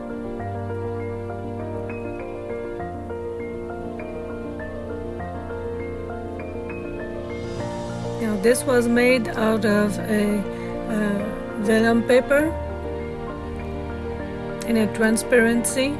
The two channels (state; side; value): identical; both; correlation 1.00